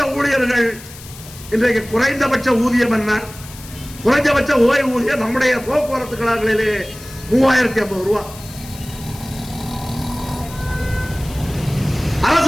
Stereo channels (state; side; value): noise; left; hiss, 17 dB below the sound